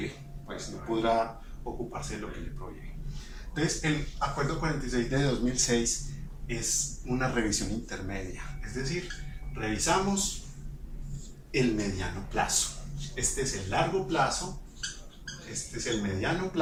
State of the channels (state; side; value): identical; both; correlation 1.00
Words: pues no podrá ocuparse de lo que le prohíbe. Entonces, el Acuerdo 46 de 2006 es una revisión intermedia, es decir, revisamos el mediano plazo. Este es el largo plazo, este es el mediano